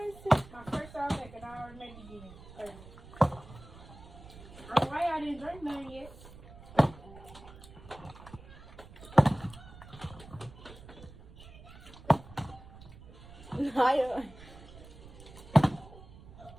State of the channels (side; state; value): right; noise; rumble, 18 dB below the sound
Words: My first time back and I already made it again. I don't know why I didn't drink none yet.